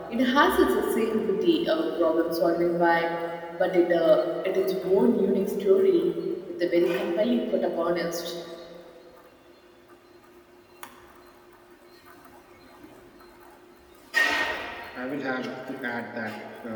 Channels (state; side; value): identical; both; correlation 1.00